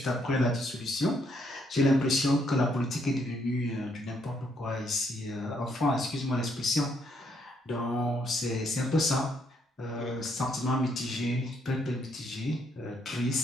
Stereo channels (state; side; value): normal; both; correlation 0.72